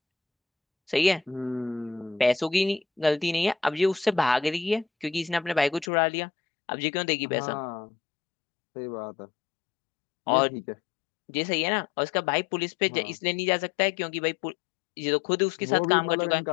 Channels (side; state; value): right; drops out; at 5.9 s